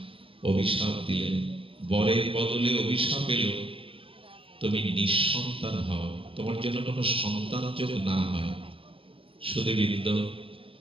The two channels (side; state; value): left; late; 0.26 ms